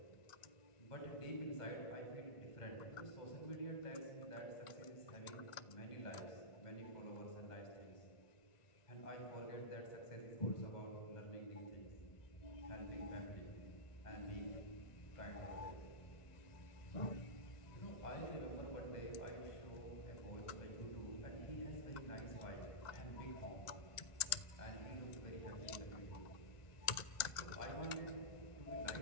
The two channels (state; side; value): late; right; 1.9 ms